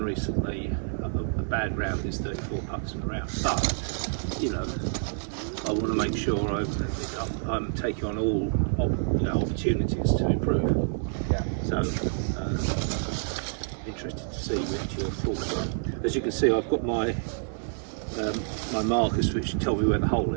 recently. A bad round is 34 putts in a round, but you know, I want to make sure I'm taking on all opportunities to improve. Yeah. So interested to see what your thoughts are. As you can see, I've got my my markers which tell me where the hole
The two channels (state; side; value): silent; left; digital silence